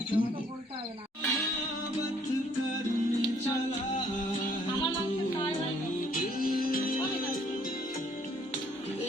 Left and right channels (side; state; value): both; normal; correlation 0.63